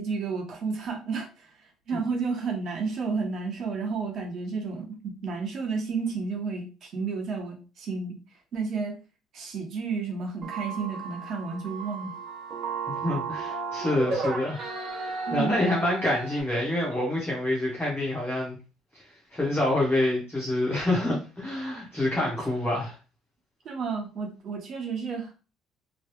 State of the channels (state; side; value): normal; both; correlation 0.69